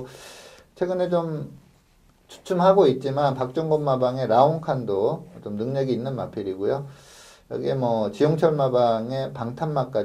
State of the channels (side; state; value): both; identical; correlation 1.00